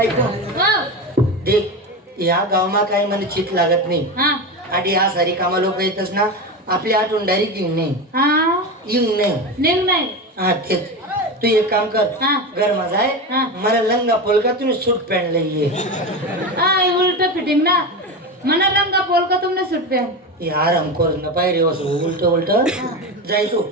हो देख या गावमा काही मला चित लागत नाही हा आधी हा सारी कामा लोक येतच ना आपली आठवण डायरेक्ट येऊन नाही हा येऊन नाही निघ नाही हा तेच तू एक काम कर हा. घर माझा आहे हा. मला लंगा पोलका तुम्ही सूट पॅन्ट लई हा उलट फिटिंग ना मना लंगा पोल का तुमने सुट पे ये आराम कर ना पायरी वसू उलट उलट जाय तू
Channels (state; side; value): normal; both; correlation 0.21